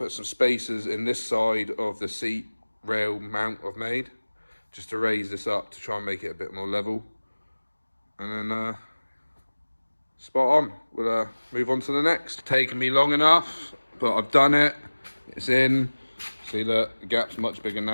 some spacers in this side of the seat rail mount I've made, just to raise this up to try and make it a bit more level. And then spot on. We'll move on to the next. It's taken me long enough, but I've done it. It's in. See that the gap's much bigger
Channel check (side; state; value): both; inverted; correlation -1.00